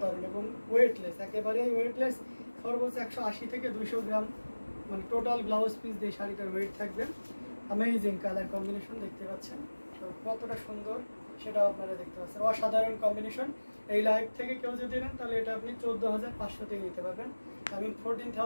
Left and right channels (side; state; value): both; inverted; correlation -1.00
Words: এবং ওয়েটলেস, একেবারেই ওয়েটলেস। সর্বোচ্চ 180 থেকে 200 গ্রাম মানে টোটাল ব্লাউজ পিস দিয়ে শাড়িটার ওয়েট থাকবে। অ্যামেজিং কালার কম্বিনেশন দেখতে পাচ্ছেন, তো কতটা সুন্দর সেটাও আপনারা দেখতে পাচ্ছেন। অসাধারণ কম্বিনেশন। এই লাইভ থেকে কেউ যদি নেন তাহলে এটা আপনি 14,500-তে নিতে পারবেন। আমি